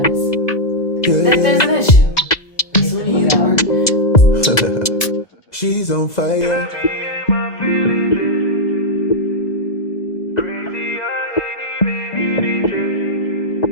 that there's an issue, as soon as you work. She's on fire.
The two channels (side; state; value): right; late; 2.0 ms